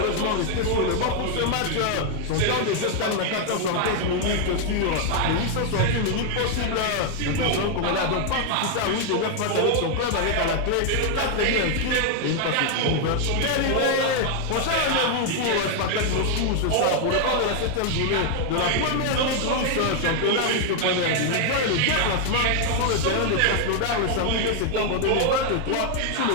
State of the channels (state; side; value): different; both; correlation 0.00